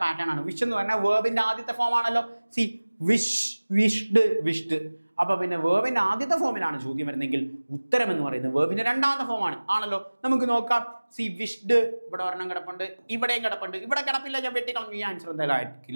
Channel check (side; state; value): both; inverted; correlation -1.00